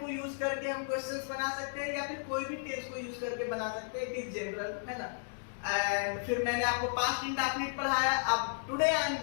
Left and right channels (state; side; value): silent; right; digital silence